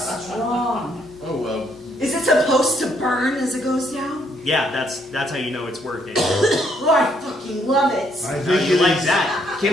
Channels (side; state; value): both; normal; correlation 0.70